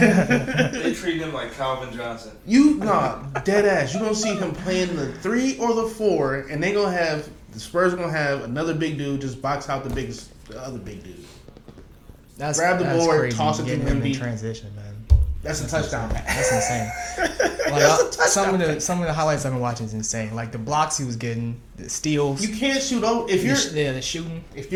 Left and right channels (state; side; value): identical; both; correlation 1.00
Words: They treat him like Calvin Johnson. Dead ass. You're gonna see him playing the 3 or the 4, and the Spurs are gonna have another big dude just box out the other big dude. Grab the board, crazy. toss it to Getting him in Wemby. transition, man. That's a touchdown. That's insane. Some of the highlights I've been watching is insane. Like the blocks he was getting, the steals. You can't shoot over the shooting. If